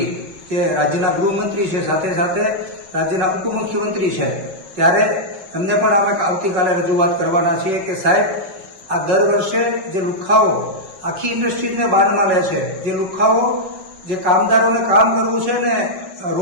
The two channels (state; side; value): late; left; 5.4 ms